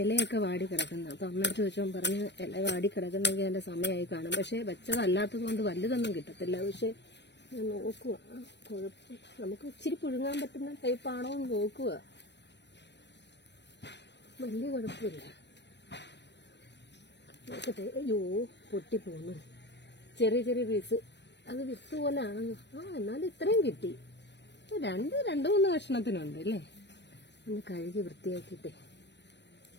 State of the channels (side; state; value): right; late; 0.50 ms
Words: ഇലയൊക്കെ വാടി കിടക്കുന്നത്. അപ്പം അമ്മയടുത്ത് ചോദിച്ചപ്പോൾ പറഞ്ഞ് ഇല വാടി കിടക്കുന്നെങ്കിൽ അതിൻ്റെ സമയമായി കാണും. പക്ഷേ വെച്ചതല്ലാത്തത് കൊണ്ട് വലുതൊന്നും കിട്ടത്തില്ല. പക്ഷേ ഞാൻ നോക്കുക, കുഴപ്പം നമുക്ക് ഇച്ചിരി പുഴുങ്ങാൻ പറ്റുന്ന ടൈപ്പാണോ എന്ന് നോക്കുക. വലിയ കുഴപ്പമില്ല. നോക്കട്ടെ. അയ്യോ, പൊട്ടിപ്പോന്നു. ചെറിയ ചെറിയ പീസ്. അത് വിത്ത് പോലെയാണ്. എന്നാലും ഇത്രയും കിട്ടി. രണ്ട് മൂന്ന് കഷ്ണത്തിനുണ്ട് അല്ലേ. ഒന്ന് കഴുകി വൃത്തിയാക്കിയിട്ടേ.